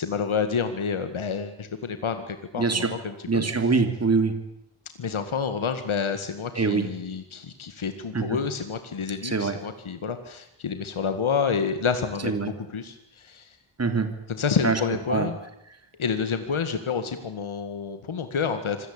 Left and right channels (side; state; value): both; normal; correlation 0.03